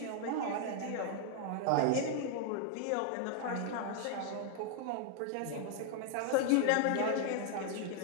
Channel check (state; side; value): different; both; correlation 0.00